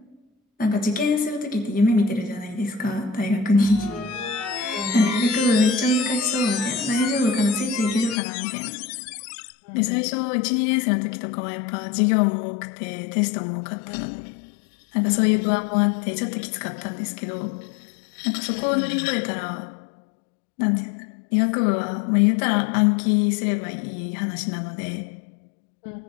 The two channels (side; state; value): right; drops out; at 8.2 s